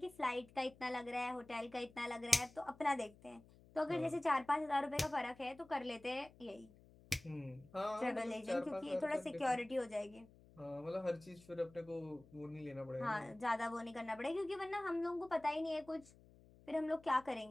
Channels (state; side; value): noise; left; hum, 24 dB below the sound